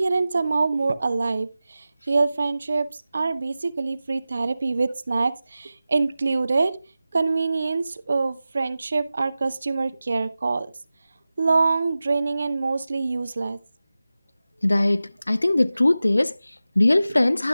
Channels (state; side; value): inverted; both; correlation -0.95